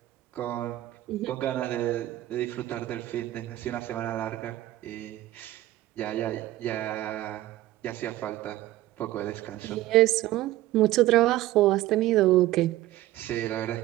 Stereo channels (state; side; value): quieter; left; 15.6 dB